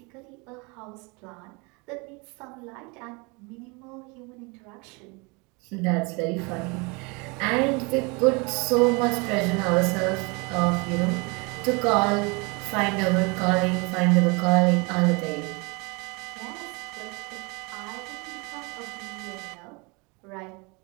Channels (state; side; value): quieter; left; 29.1 dB